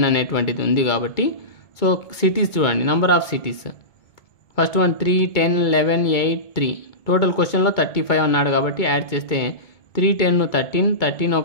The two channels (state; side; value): late; right; 2.2 ms